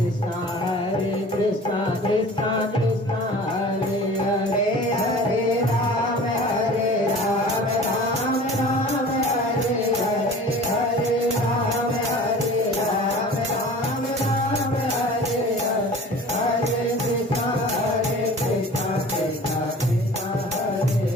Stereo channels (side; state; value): both; normal; correlation 0.42